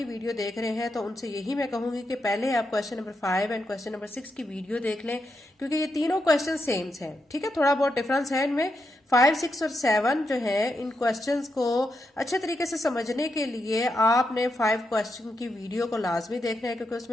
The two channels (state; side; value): normal; both; correlation 0.84